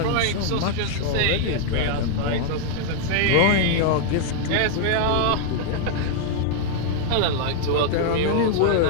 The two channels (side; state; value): both; different; correlation 0.00